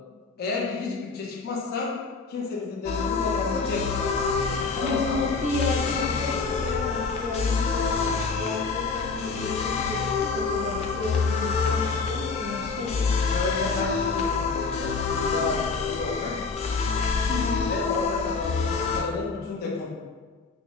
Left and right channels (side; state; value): right; quieter; 4.3 dB